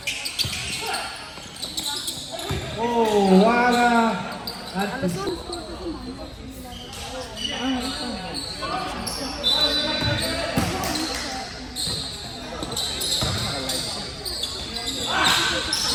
Oh, wala. At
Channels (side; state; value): both; identical; correlation 1.00